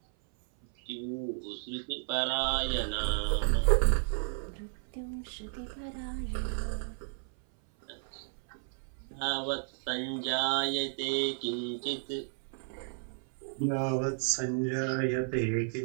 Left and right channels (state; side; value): silent; left; 56 dB below the other